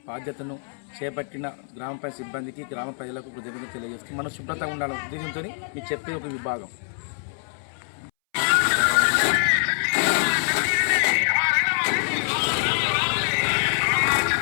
బాధ్యతను చేపట్టిన గ్రామ పంచాయతీ సిబ్బందికి, గ్రామ ప్రజలకు కృతజ్ఞతలు తెలియజేస్తూ మనం శుభ్రతగా ఉండాలనే ఉద్దేశంతో మీకు చెప్పే ఒక విభాగం.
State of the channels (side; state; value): right; silent; 62 dB below the other